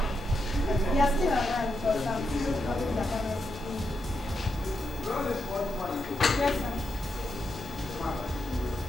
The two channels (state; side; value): normal; both; correlation 0.83